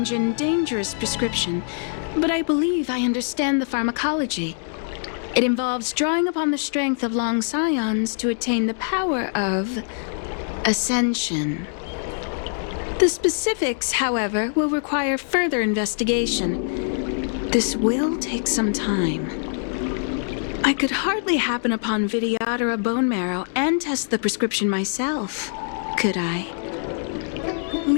and dangerous prescription, but I believe I understand the pharmacology. It involves drawing upon the strength of long scions to attain the power of ascension. The specifics, however, will require further investigation. This will take some time. I could hardly happen upon Vidyadhara bone marrow and test the prescription myself, could I?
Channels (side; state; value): right; silent; digital silence